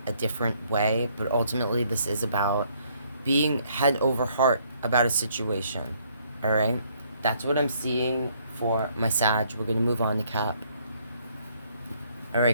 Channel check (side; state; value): both; inverted; correlation -0.66